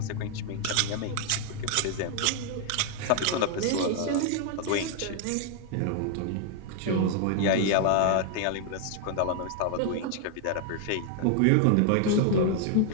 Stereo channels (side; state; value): both; different; correlation 0.00